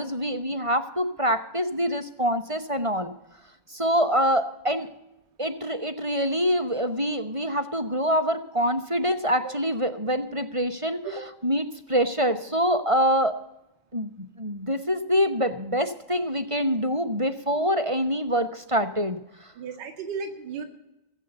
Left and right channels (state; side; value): late; left; 1.5 ms